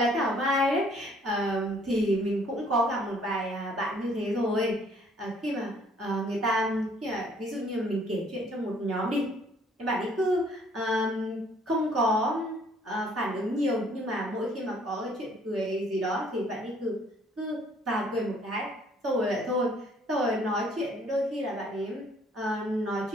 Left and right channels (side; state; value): both; normal; correlation 0.60